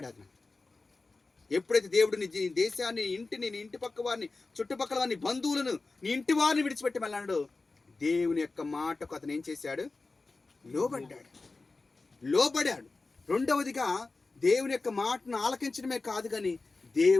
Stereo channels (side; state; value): right; quieter; 3.6 dB